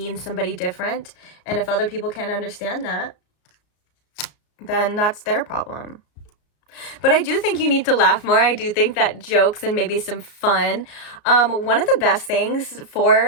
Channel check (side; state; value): right; late; 34 ms